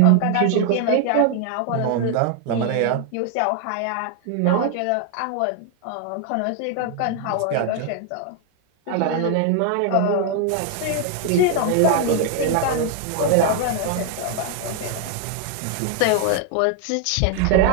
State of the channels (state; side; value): different; both; correlation 0.00